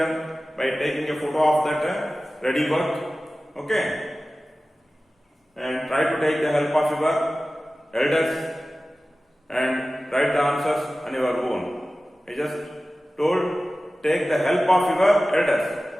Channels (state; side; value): normal; both; correlation 0.96